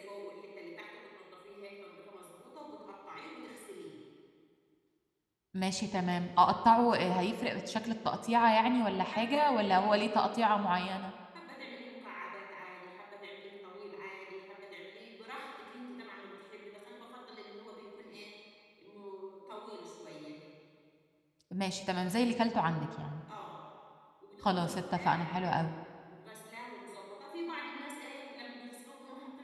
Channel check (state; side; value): identical; both; correlation 1.00